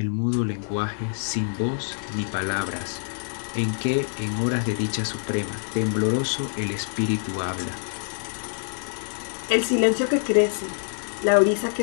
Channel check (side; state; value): right; silent; digital silence